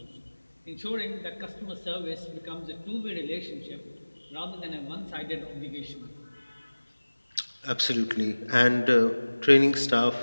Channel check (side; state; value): both; inverted; correlation -1.00